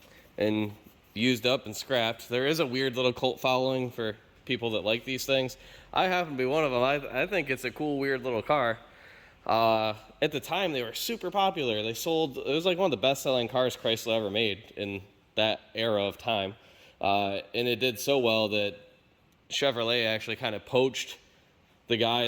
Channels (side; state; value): both; identical; correlation 1.00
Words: and used up and scrapped. There is a weird little cult following for people that like these things. I happen to be one of them. I think it's a cool, weird little car. At the time, they were super popular. They sold, it was like one of the best-selling cars Chrysler ever made in that era of time. And it did so well that Chevrolet actually kind of poached the